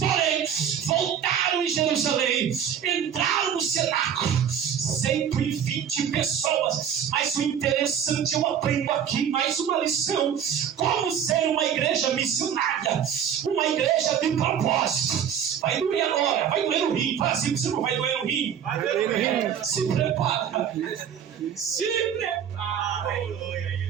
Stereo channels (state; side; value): quieter; left; 8.5 dB